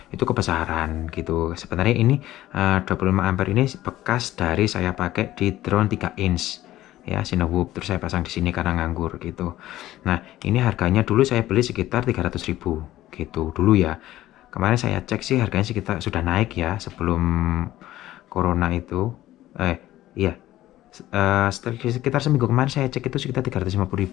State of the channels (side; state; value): right; quieter; 14.7 dB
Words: itu kebesaran gitu. Sebenarnya ini 25 ampere ini bekas dari saya pakai di drone 3 inch ya, Cinewhoop, terus saya pasang di sini karena nganggur gitu. Nah, ini harganya dulu saya beli sekitar 300.000 gitu dulu ya. Kemarin saya cek sih harganya sekitar sudah naik ya sebelum corona itu. Iya. Sekitar seminggu kemarin saya cek itu sekitar